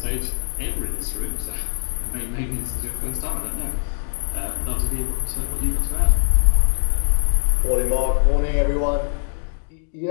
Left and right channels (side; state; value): right; silent; digital silence